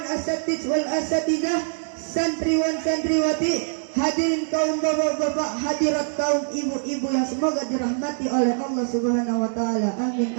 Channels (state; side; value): silent; left; digital silence